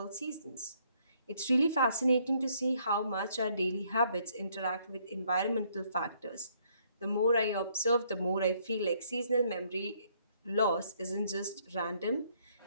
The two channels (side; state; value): both; inverted; correlation -0.68